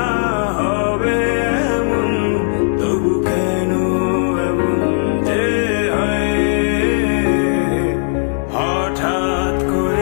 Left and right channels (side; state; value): right; silent; digital silence